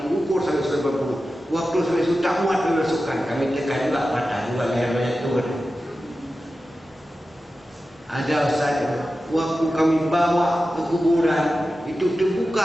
ukur sampai 90. Waktu sampai sudah muat dimasukkan, kami tekan juga patah juga leher mayat itu. Ada Ustaz, waktu kami bawa ke kuburan itu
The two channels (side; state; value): both; normal; correlation 0.93